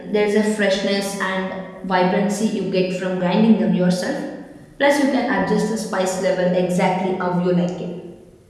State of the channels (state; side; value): identical; both; correlation 1.00